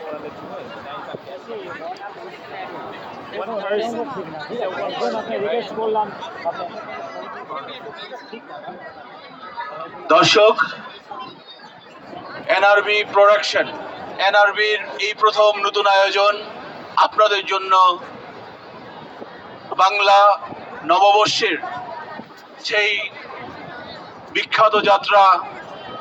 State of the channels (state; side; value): identical; both; correlation 1.00